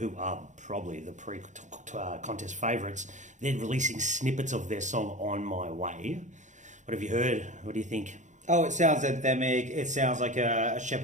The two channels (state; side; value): late; left; 0.35 ms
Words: are probably the pre-contest favourites, they're releasing snippets of their song On My Way. What have you heard? What do you think? Oh, it sounds anthemic. It sounds like a